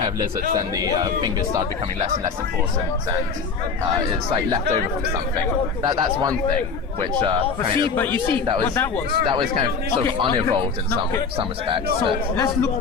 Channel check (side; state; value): right; quieter; 5.2 dB